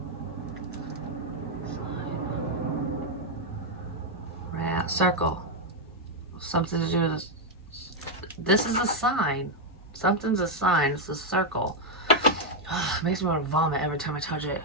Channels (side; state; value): both; normal; correlation 0.01